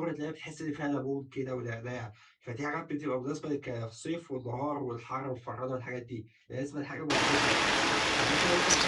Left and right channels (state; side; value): identical; both; correlation 1.00